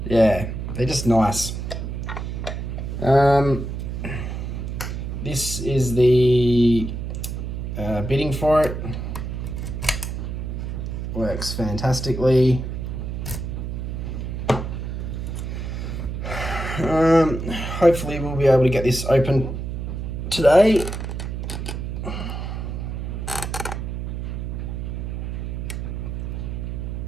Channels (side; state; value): right; noise; hum, 5 dB below the sound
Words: Yeah, they're just nice. This is the bidding for it. Works fantastically. Hopefully we'll be able to get this open today.